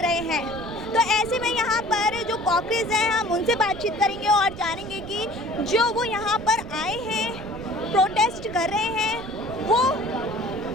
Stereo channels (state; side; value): noise; right; rumble, 14 dB below the sound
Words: हैं। तो ऐसे में यहाँ पर जो कॉकरेज हैं, हम उनसे बातचीत करेंगे और जानेंगे कि जो वो यहाँ पर आए हैं, प्रोटेस्ट कर रहे हैं, वो